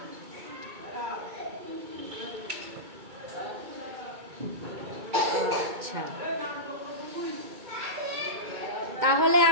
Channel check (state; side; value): late; left; 2.3 ms